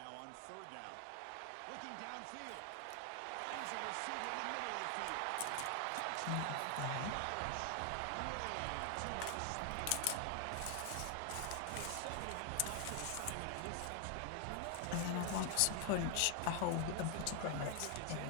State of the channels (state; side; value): different; both; correlation 0.00